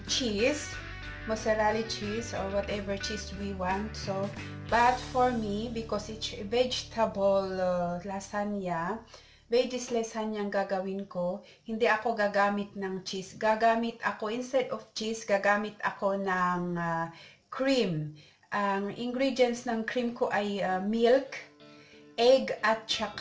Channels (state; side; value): identical; both; correlation 1.00